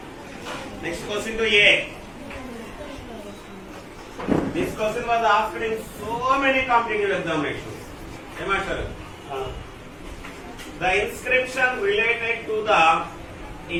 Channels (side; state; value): both; identical; correlation 1.00